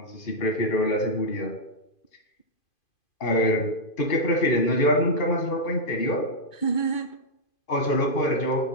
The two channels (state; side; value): late; right; 2.5 ms